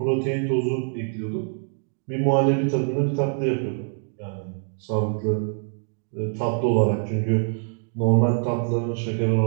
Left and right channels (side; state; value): left; silent; 62 dB below the other